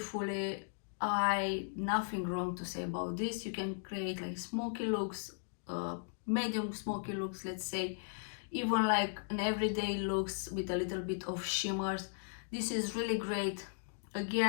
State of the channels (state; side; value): silent; right; digital silence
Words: nothing wrong to say about this. You can create like smoky looks, medium smoky looks, let's say, even like an everyday looks with a little bit of shimmers. This is really great.